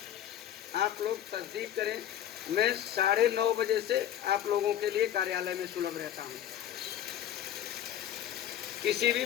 आप लोग तस्दीक करें, मैं 9:30 बजे से आप लोगों के लिए कार्यालय में सुलभ रहता हूं। किसी भी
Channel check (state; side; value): quieter; right; 11.0 dB